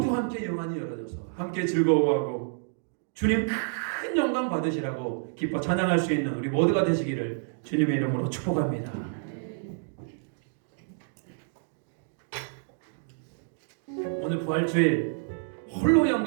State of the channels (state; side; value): silent; left; digital silence